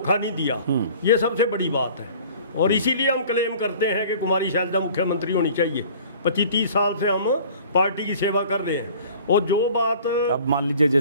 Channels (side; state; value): both; inverted; correlation -0.48